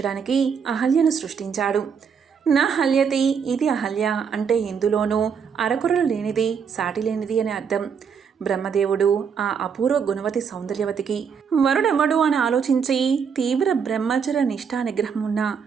అహల్యను సృష్టించాడు. నా హల్యతి ఇది అహల్య అంటే ఇందులోనూ అరకురలు లేనిది, సాటి లేనిది అని అర్థం. బ్రహ్మదేవుడు ఆ అపూర్వ గుణవతి సౌందర్యవతికి వరుడెవ్వడు అని ఆలోచించి తీవ్ర బ్రహ్మచర్య నిష్ఠా నిగ్రహం ఉన్న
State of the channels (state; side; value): quieter; left; 6.6 dB